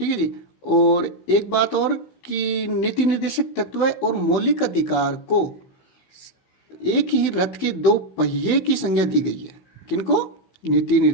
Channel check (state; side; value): late; right; 16 ms